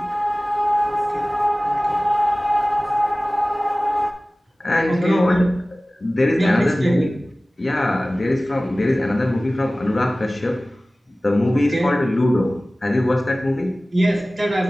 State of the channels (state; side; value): normal; both; correlation 0.97